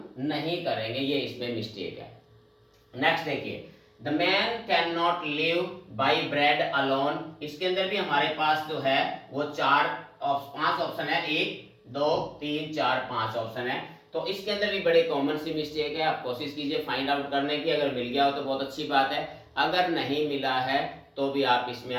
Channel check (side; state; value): both; identical; correlation 1.00